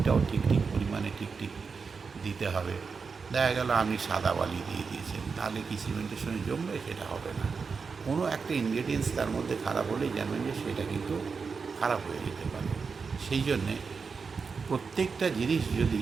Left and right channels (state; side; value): quieter; left; 5.2 dB